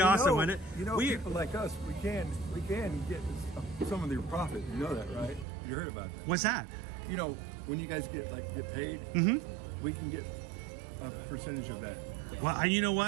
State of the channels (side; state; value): left; drops out; at 5.5 s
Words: awesome, wouldn't it? You know, people like us, we can get some of their profit. You know that, right? You heard about that. What's that? You know, when you guys get paid, we can get a percentage of that. Well, you know